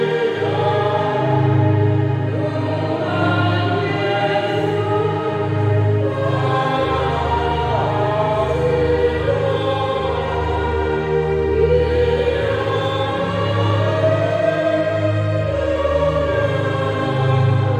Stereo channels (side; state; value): both; identical; correlation 1.00